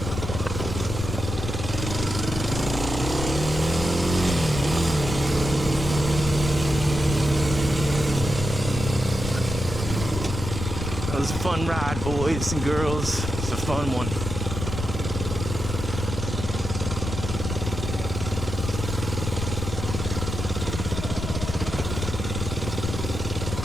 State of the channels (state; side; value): noise; left; rumble, 5 dB below the sound